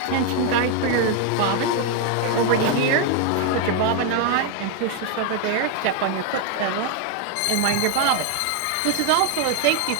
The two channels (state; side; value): different; both; correlation 0.01